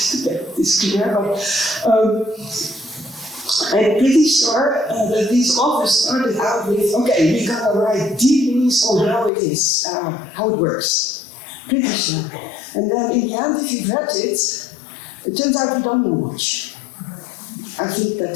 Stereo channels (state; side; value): drops out; right; at 9.3 s